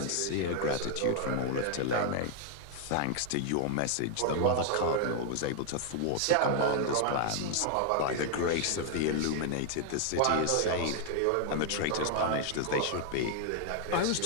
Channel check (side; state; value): both; different; correlation 0.00